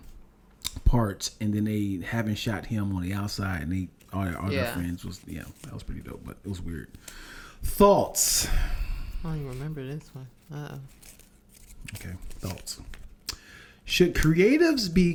parts, and then they haven't shot him on the outside, and all their friends was that was pretty dope, but it was weird. Thoughts? I don't even remember this one. Okay, thoughts. Should creatives be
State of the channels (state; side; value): identical; both; correlation 1.00